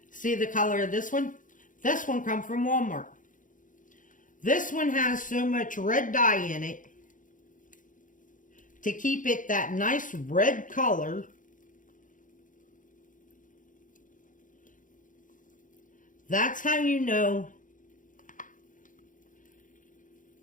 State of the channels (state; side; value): late; right; 0.38 ms